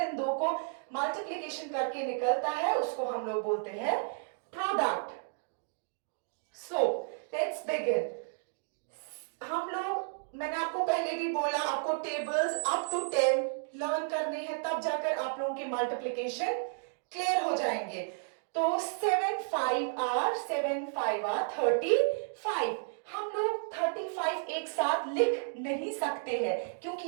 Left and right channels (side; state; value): left; silent; digital silence